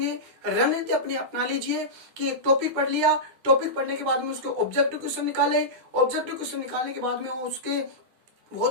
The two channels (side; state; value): left; late; 9.9 ms